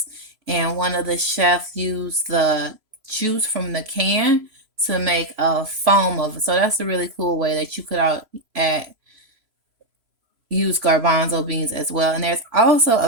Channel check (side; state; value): left; late; 3.0 ms